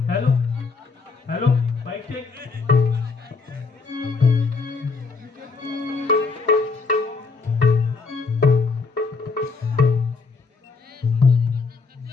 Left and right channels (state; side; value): quieter; right; 4.5 dB